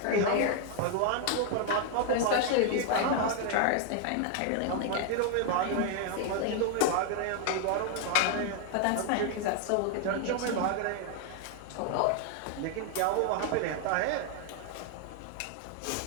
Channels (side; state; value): both; different; correlation 0.00